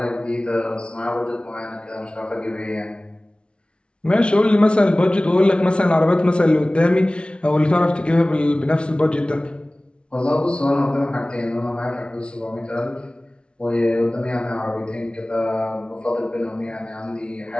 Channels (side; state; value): right; late; 0.058 ms